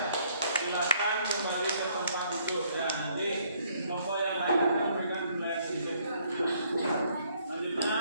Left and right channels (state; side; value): inverted; both; correlation -0.66